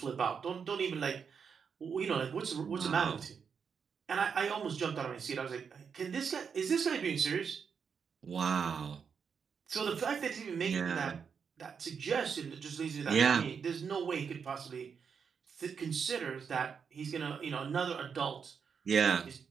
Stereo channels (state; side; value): quieter; left; 6.4 dB